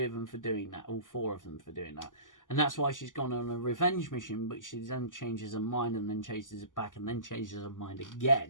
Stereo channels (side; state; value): right; late; 0.88 ms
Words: of them for doing that, all four of them for doing that, and that's why she's gone on a revenge mission, but she then changes her mind, and then changes it back, and then changes her mind